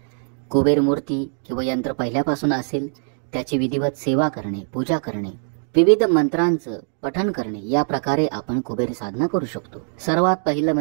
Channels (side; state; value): left; silent; 61 dB below the other